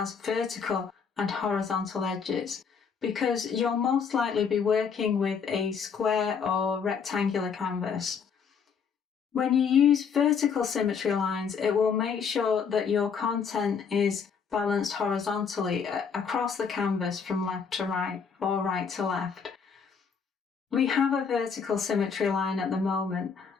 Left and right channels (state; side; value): quieter; right; 6.3 dB